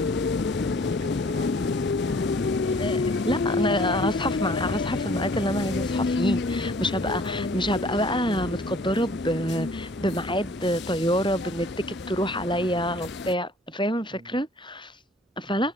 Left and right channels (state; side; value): normal; both; correlation 0.54